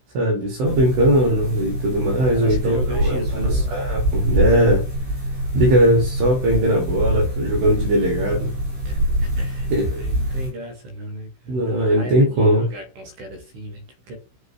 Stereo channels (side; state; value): left; late; 16 ms